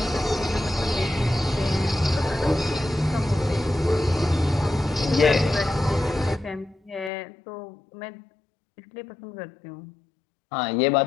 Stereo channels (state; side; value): drops out; right; at 7.1 s